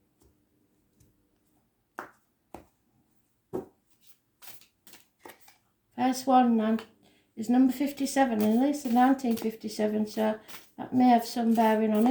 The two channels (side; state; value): both; identical; correlation 1.00